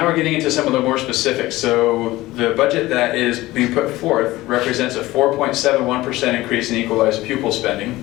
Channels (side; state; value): right; quieter; 18.1 dB